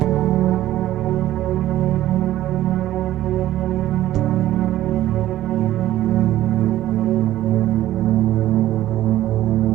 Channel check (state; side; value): quieter; left; 14.0 dB